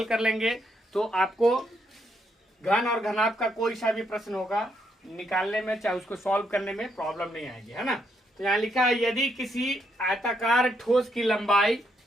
कर लेंगे तो आपको घन और घनाभ का कोई सा भी प्रश्न होगा निकालने में, चाहे उसको सॉल्व करने में प्रॉब्लम नहीं आएगी, है ना। तो यहाँ लिखा है, यदि किसी आयताकार ठोस की लंबाई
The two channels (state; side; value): normal; both; correlation 0.76